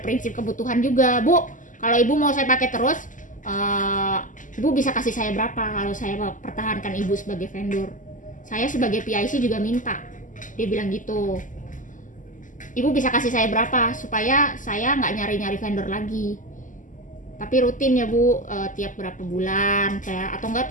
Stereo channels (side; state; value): right; late; 0.37 ms